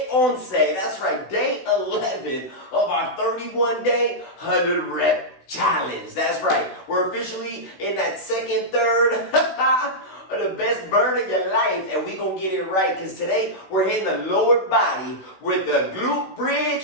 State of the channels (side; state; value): right; late; 16 ms